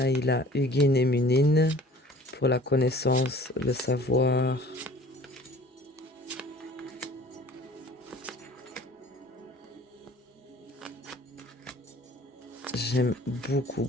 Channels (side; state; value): both; normal; correlation 0.48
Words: il a Hugin et Munin pour la connaissance, le savoir. J'aime beaucoup